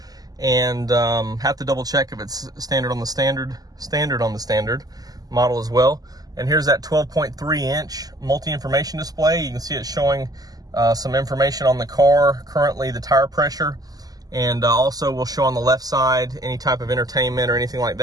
and have to double check if it's standard on the standard model as well. And here's that 12.3 inch multi-information display. You can see it showing some information on the car, currently the tire pressure, and also will show on the left side any type of entertainment or anything like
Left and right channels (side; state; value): left; late; 0.18 ms